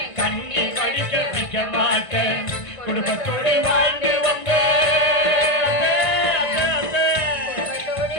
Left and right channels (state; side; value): late; right; 1.5 ms